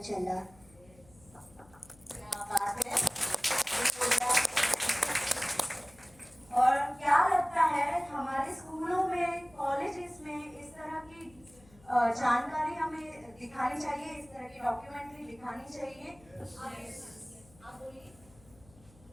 चला। क्या बात है। और क्या लगता है हमारे स्कूलों में, कॉलेजेस में इस तरह की जानकारी हमें दिखानी चाहिए, इस तरह की डॉक्यूमेंट्री दिखानी चाहिए। आप बोलिए।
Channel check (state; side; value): noise; left; hum, 26 dB below the sound